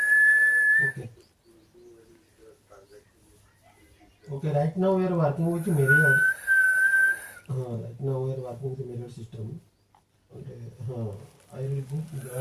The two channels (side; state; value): both; identical; correlation 1.00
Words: Okay. Okay. Right now we are working with mirrors. Right now we are working with the mirror system. And, I will book